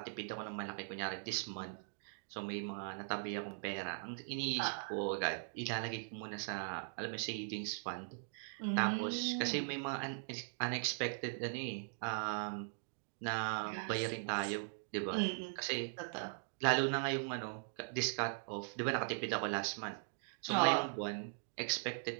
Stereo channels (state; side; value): silent; left; digital silence